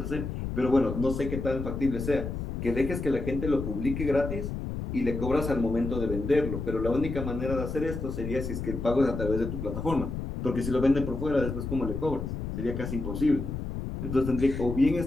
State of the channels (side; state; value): left; noise; rumble, 5 dB below the sound